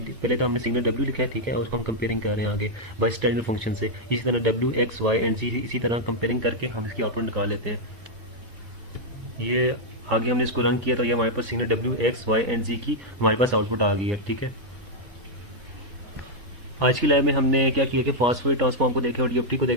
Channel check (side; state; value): left; late; 3.7 ms